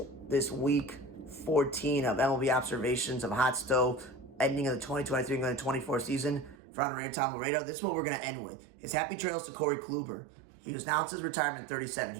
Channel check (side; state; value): left; drops out; at 6.6 s